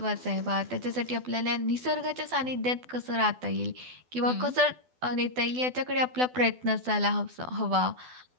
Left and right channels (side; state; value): left; late; 12 ms